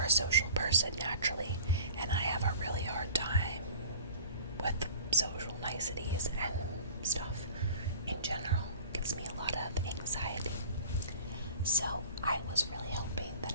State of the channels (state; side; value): inverted; both; correlation -0.42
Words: social person naturally, and I have a really hard time with social niceties and stuff in general. It gives me a lot of anxiety. So I was really hoping that